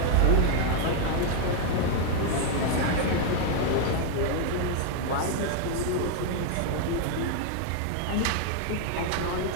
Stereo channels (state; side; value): different; both; correlation 0.00